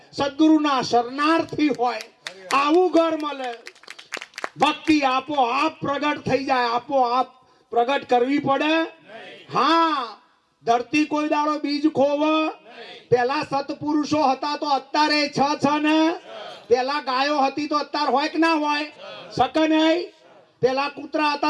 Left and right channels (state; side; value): identical; both; correlation 1.00